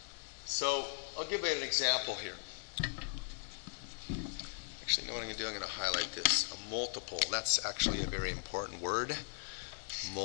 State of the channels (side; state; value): right; silent; 52 dB below the other